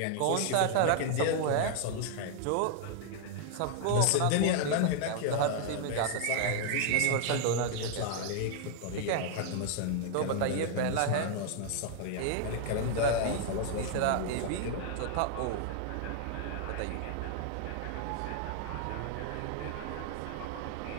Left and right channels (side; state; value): both; different; correlation 0.00